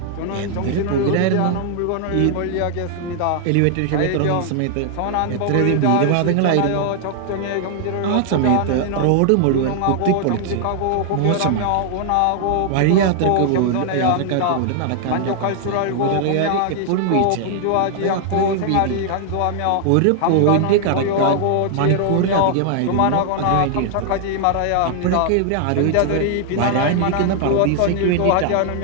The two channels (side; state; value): both; different; correlation 0.00